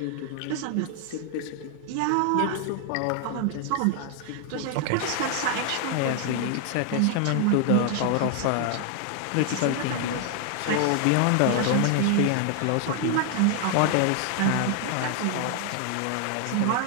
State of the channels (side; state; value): both; different; correlation 0.00